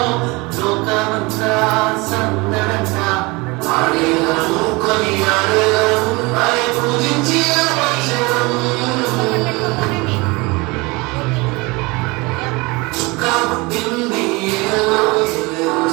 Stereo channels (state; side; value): quieter; left; 24.9 dB